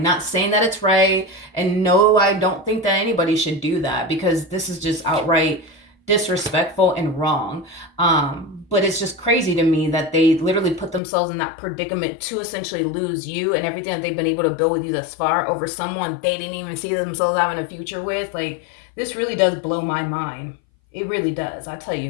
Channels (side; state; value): right; drops out; at 11.0 s